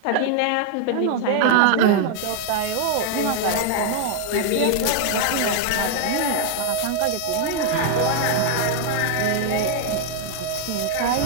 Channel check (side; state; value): both; different; correlation 0.00